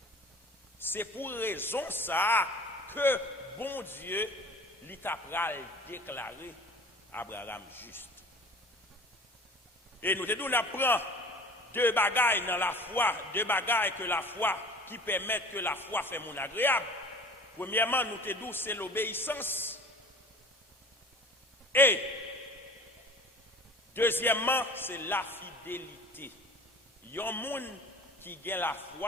C'est pour raison ça que bon Dieu il t'a déclaré Abraham juste. Et nous te nous apprend deux bagailles dans la foi, deux bagailles que la foi qui permettent que la foi fait mon agréable. Premièrement, nous te dit c'est l'obéissance. Et deuxièmement, c'est la fidélité. Il y a un monde qui gagne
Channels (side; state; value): both; normal; correlation 0.44